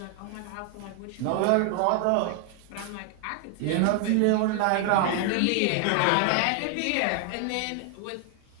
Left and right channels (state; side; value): different; both; correlation 0.00